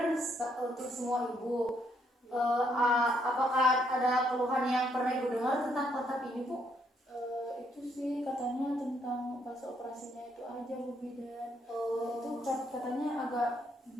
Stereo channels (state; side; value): normal; both; correlation 0.72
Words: untuk semua ibu. Apakah ada keluhan yang pernah Ibu dengar tentang kontrak ini Bu? Itu sih katanya tentang pas operasinya itu aja Bu Bidan. Itu katanya agak